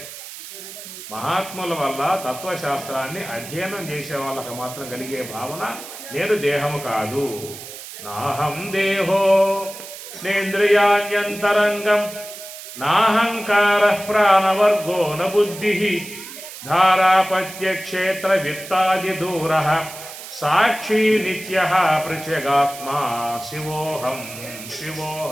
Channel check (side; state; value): right; noise; hiss, 13 dB below the sound